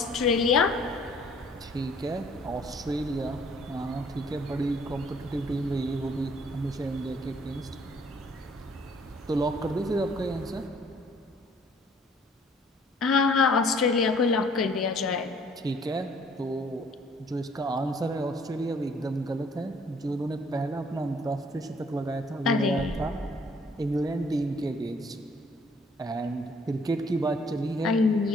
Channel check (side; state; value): both; normal; correlation 0.59